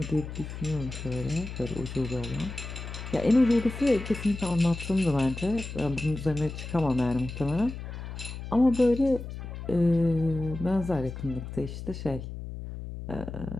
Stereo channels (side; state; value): left; noise; hum, 9 dB below the sound